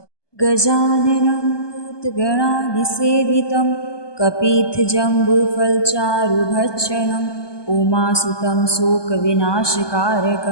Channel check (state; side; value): late; right; 1.2 ms